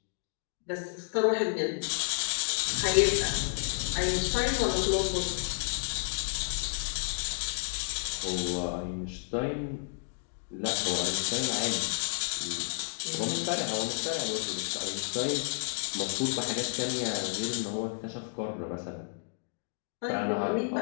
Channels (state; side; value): silent; right; digital silence